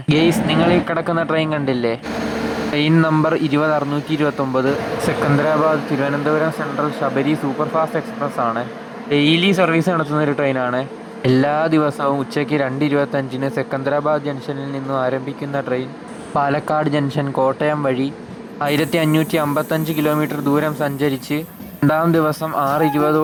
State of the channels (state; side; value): identical; both; correlation 1.00